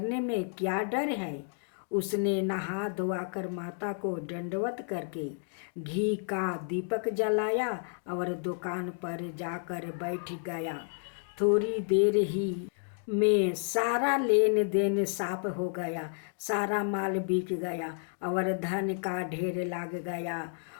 में क्या डर है? उसने नहा धोआकर माता को दंडवत करके घी का दीपक जलाया और दुकान पर जाकर बैठ गया। थोड़ी देर ही में सारा लेन देन साफ हो गया, सारा माल बिक गया और धन का ढेर लग गया।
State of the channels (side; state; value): right; silent; 57 dB below the other